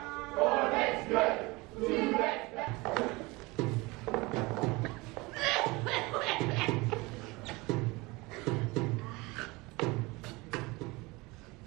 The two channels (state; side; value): quieter; left; 23.6 dB